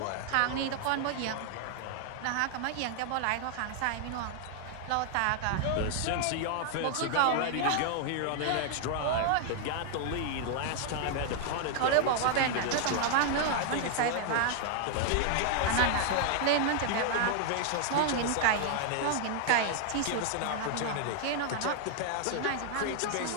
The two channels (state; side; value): different; both; correlation 0.00